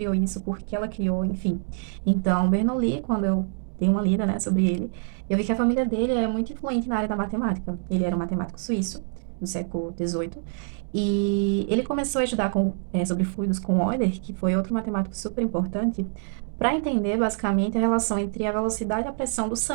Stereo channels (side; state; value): left; silent; digital silence